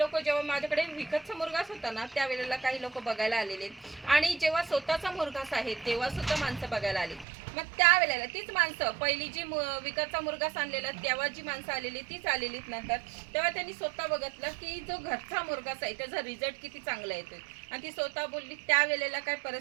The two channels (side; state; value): left; drops out; at 7.2 s